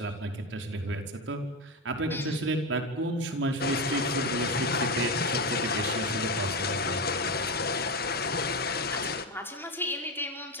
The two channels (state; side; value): normal; both; correlation 0.15